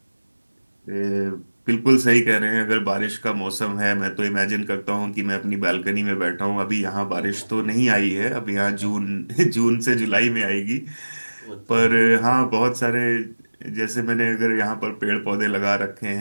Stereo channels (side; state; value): both; inverted; correlation -1.00